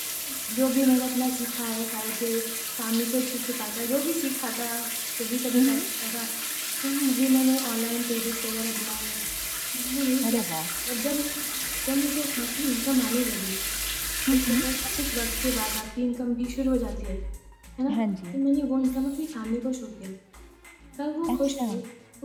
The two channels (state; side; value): identical; both; correlation 1.00